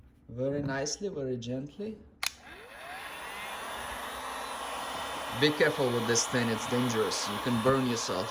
Very nicely, very gently. Be careful with this thing, it's dangerous. You can burn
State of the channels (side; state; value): both; identical; correlation 1.00